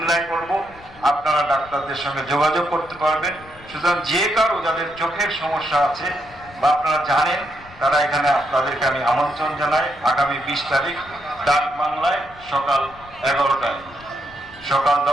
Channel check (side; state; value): left; noise; rumble, 22 dB below the sound